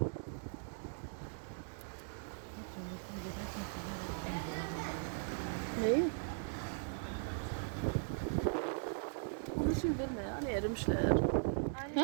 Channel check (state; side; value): silent; left; digital silence